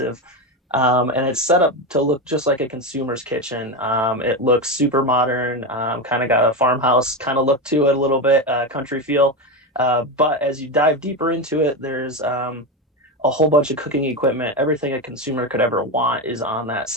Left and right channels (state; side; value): normal; both; correlation 0.15